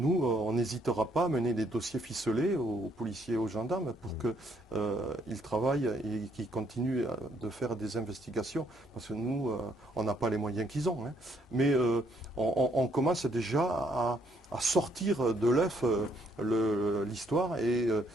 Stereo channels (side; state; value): both; normal; correlation 0.70